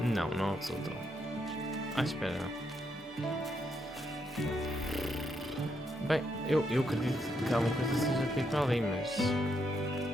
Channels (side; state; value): both; normal; correlation 0.79